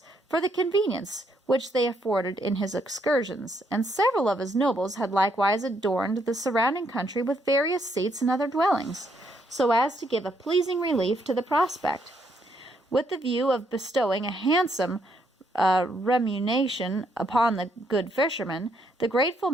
for the convenience which they afforded in his excursions, and several of his nobles had likewise adorned the surrounding country with various seats and other dwellings, so as to give a pleasing relief to the prospect. With the view of bestowing a handsome remuneration upon the good fisherman, the grateful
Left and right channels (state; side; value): normal; both; correlation 0.73